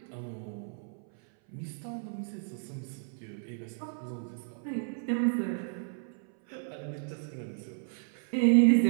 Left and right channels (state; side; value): silent; left; 56 dB below the other